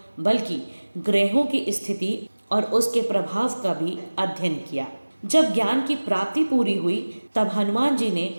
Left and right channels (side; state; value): both; inverted; correlation -1.00